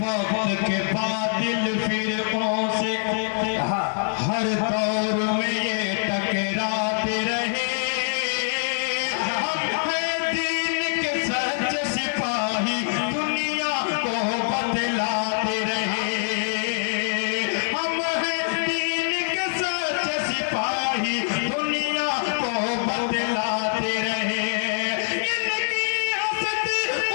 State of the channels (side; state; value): right; silent; digital silence